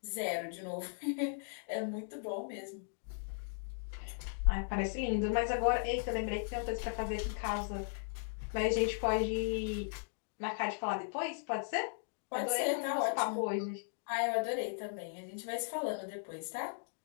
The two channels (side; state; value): right; silent; digital silence